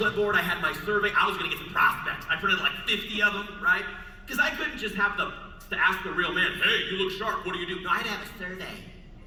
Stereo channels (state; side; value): identical; both; correlation 1.00